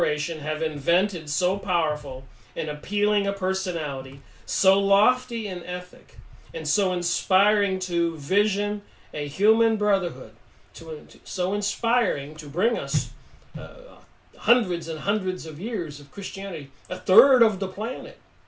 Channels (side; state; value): both; identical; correlation 1.00